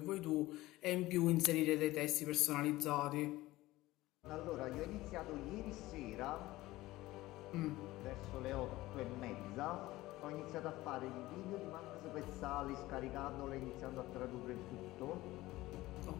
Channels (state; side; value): quieter; right; 17.9 dB